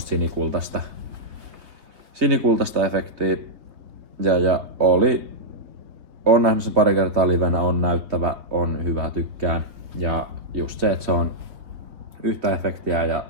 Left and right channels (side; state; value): left; late; 3.5 ms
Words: sinikultaista efektiä. Ja on nähnyt sen pari kertaa livenä, on näyttävä, on hyvä, tykkään. Ja just se, että se on yhtä efektiä ja